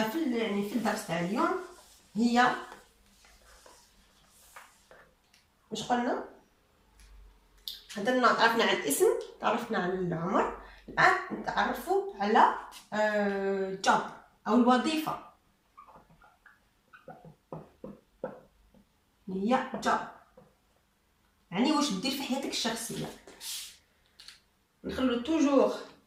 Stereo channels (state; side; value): identical; both; correlation 1.00